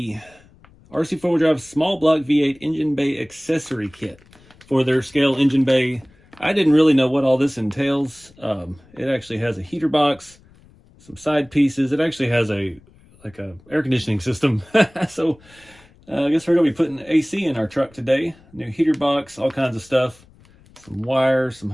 RC4 Drive small block V8 engine bay accessory kit for their scale engine bay. I didn't really know what all this entails. It actually has a heater box, some side pieces. It actually has a air conditioning system. So I guess we're gonna be putting AC in our truck today. New heater box, all kinds of stuff. Some wire, some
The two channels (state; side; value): noise; left; rumble, 27 dB below the sound